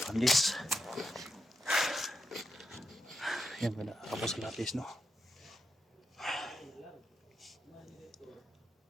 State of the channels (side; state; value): both; normal; correlation 0.84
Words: Yan, wala ako sa lapis, no?